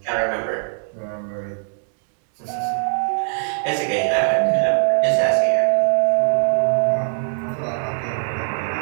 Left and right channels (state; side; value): silent; left; digital silence